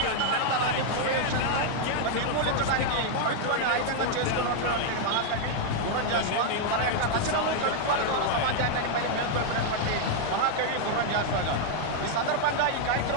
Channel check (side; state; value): both; different; correlation 0.00